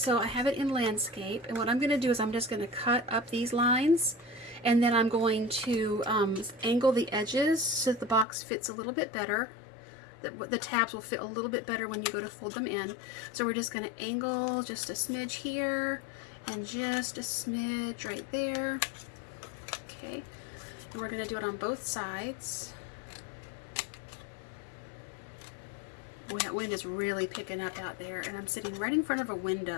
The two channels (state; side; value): drops out; right; at 8.2 s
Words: I have it in landscape, and what I'm going to do is I'm just going to cut up these lines, and then I'm going to angle the edges so that the box fits a little bit better. The tabs will fit a little bit better when you go to fold them in. So we're just going to angle just a smidge here and just a smidge right there. Okay, and we're going to do it on both sides. Boy, that wind is really picking up out there, and I'm sitting right in front of a